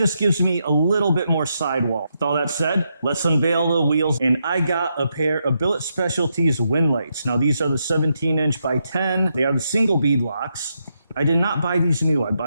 gives me a little bit more sidewall. With all that said, let's unveil the wheels. And I got a pair of Billet Specialties wind lights. Now these are the 17-inch by 10. They are the single beadlocks. I did not buy these new. I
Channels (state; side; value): inverted; both; correlation -0.81